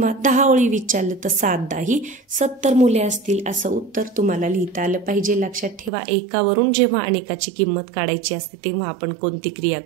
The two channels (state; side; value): drops out; left; at 5.9 s